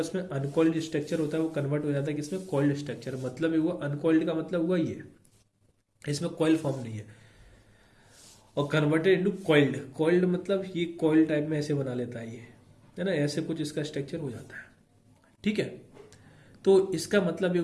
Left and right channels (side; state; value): both; identical; correlation 1.00